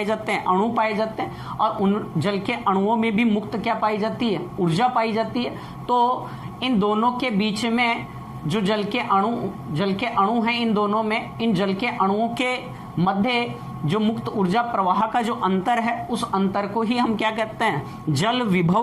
जाते हैं? अणु पाए जाते हैं। और उन जल के अणुओं में भी मुक्त क्या पाई जाती है? ऊर्जा पाई जाती है। तो इन दोनों के बीच में जो जल के अणु हैं, इन दोनों में, इन जल के अणुओं के मध्य जो मुक्त ऊर्जा प्रवाह का जो अंतर है उस अंतर को ही हम क्या कहते हैं? जल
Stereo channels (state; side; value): identical; both; correlation 1.00